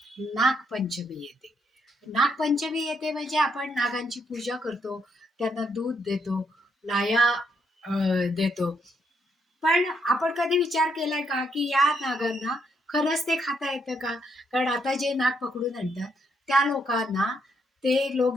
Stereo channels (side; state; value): both; normal; correlation 0.76